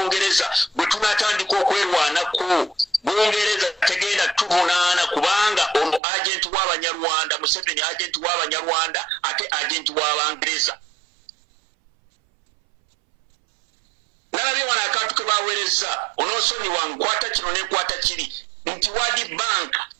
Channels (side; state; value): left; drops out; at 6.0 s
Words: bwe tunatandika okwerwanako Bungereza tegenda tuvunaana kubanga ono agent w'Abanyarwanda Museveni agent w'Abanyarwanda ate agent w'Abangereza. Nalabye wana akantu ke baweereza onoosonyi wankwata kino nekwata kiri nti World Bank